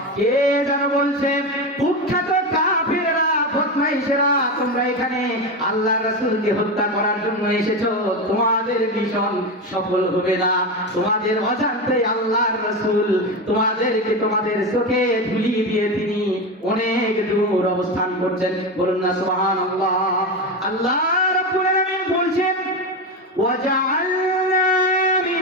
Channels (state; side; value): normal; both; correlation 0.18